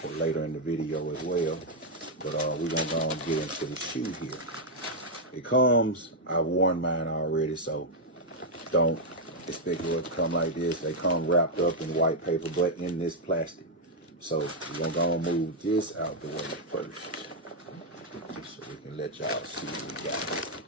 later in the video as well. But we're gonna go and get into the shoe here. It comes, I've worn mine already, so don't expect it to come like this. They come wrapped up in white paper, but in this plastic. So we're gonna go and move this out the way first, so we can let y'all see what we got.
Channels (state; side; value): normal; both; correlation -0.02